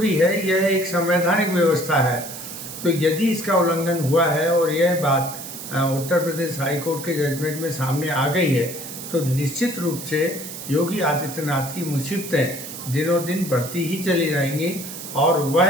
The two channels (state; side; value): noise; right; hiss, 10 dB below the sound